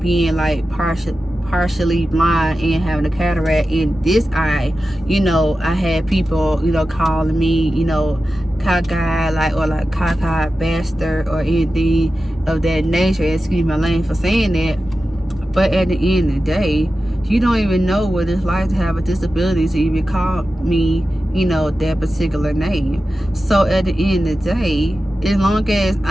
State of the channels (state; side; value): normal; both; correlation 0.93